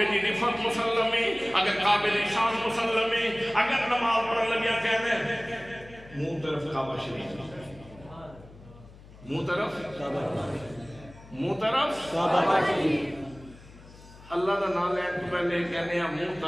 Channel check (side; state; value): left; noise; hum, 20 dB below the sound